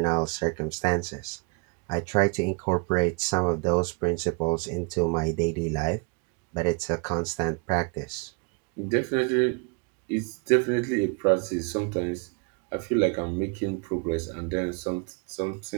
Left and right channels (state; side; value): quieter; left; 32.9 dB